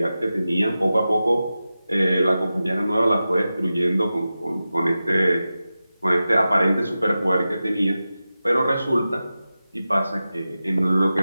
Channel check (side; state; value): both; inverted; correlation -0.93